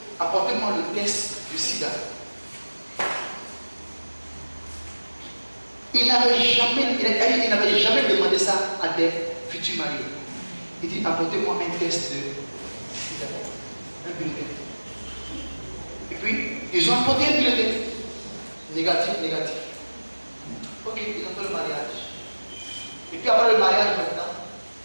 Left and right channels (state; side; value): inverted; both; correlation -1.00